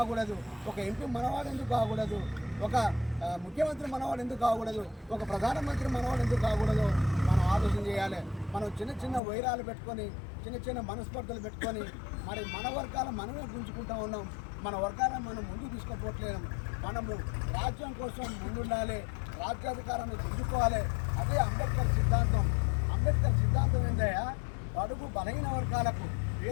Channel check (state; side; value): drops out; right; at 9.2 s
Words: ఒక ఎంపీ మనవాడు ఎందుకు కాకూడదు? ఒక ముఖ్యమంత్రి మనవాడు ఎందుకు కాకూడదు? ఒక ప్రధానమంత్రి మనవాడు ఎందుకు కాకూడదు? మనం ఆలోచన చేయాలి. మనం చిన్న చిన్న వైరాలు పెట్టుకొని, చిన్న చిన్న మనస్పర్ధలు పెట్టుకొని మరి మన వర్గాల మనమే గుంజుకుంటూ ఉన్నాం. మన వర్గాలను మనం ముందుకు తీసుకుపోవట్లేము. మనము రాజ్యం కోసం ముందుండాలి, రాజ్యాధికారాన్ని గుంజుకోవాలి. అదే అంబేద్కర్ సిద్ధాంతం. అంబేద్కర్ సిద్ధాంతం ఏంటయ్యా? అడుగు బలహీన వర్గాలకు,